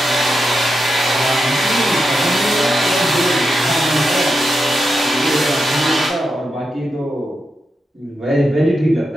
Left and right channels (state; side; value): normal; both; correlation 0.87